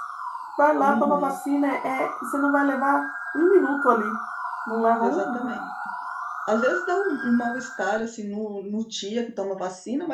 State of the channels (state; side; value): identical; both; correlation 1.00